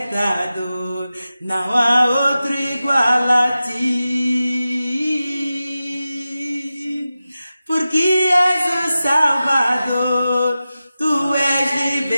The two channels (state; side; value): inverted; both; correlation -0.94